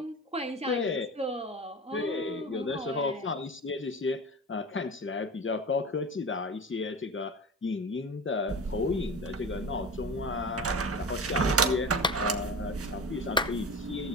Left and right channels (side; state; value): both; normal; correlation 0.31